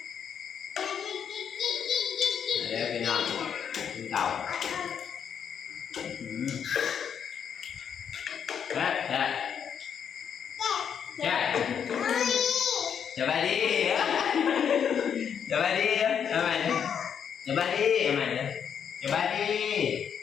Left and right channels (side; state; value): right; quieter; 7.8 dB